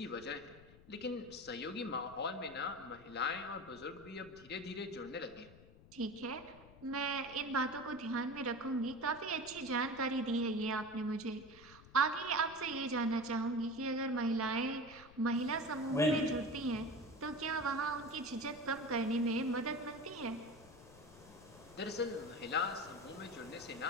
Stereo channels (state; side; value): noise; left; rumble, 21 dB below the sound